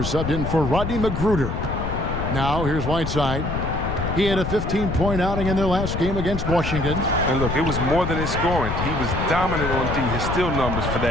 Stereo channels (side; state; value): left; noise; rumble, 3 dB below the sound